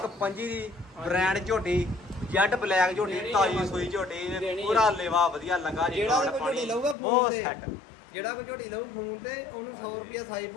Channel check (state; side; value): drops out; right; at 7.0 s